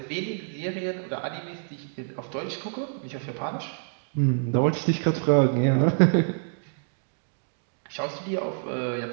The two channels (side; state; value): left; silent; digital silence